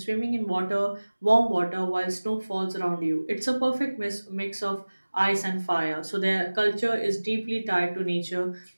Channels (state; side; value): inverted; both; correlation -1.00